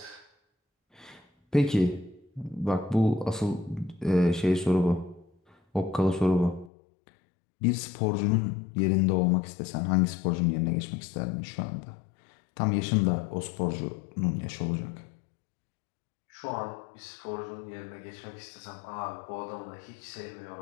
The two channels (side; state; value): right; drops out; at 6.7 s